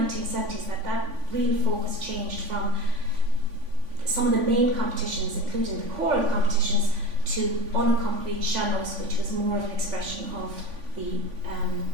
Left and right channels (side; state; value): left; late; 3.5 ms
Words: that real focus changed from some of the main competitions, including the choral competitions, to unaccompanied sean-nós, which was more of an expression of the